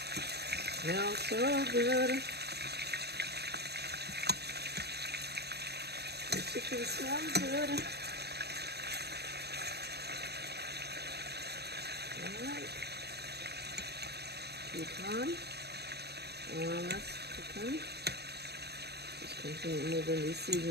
Smells so good. The chicken smells good. Alright. Keep on. While that's cooking, just continue moving these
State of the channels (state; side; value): late; left; 0.47 ms